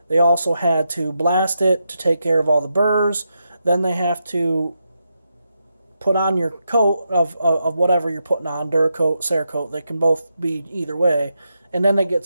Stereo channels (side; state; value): both; inverted; correlation -0.85